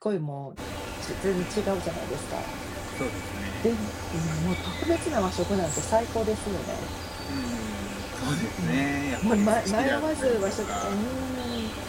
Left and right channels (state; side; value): identical; both; correlation 1.00